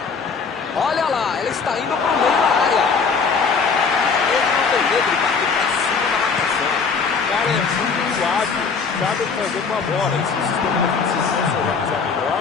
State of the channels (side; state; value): right; quieter; 5.3 dB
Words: Olha lá, ele está indo para o meio da área. Ele não tem medo de bater para cima da marcação. O cara é muito hábil, sabe o que fazer com a bola. E se o sistema defensivo não se organizar melhor,